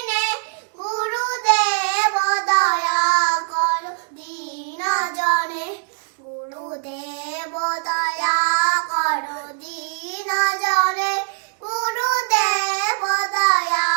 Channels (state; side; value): silent; left; digital silence